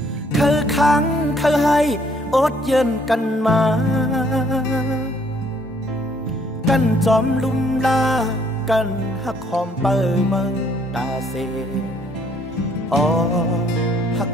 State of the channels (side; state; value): both; normal; correlation 0.65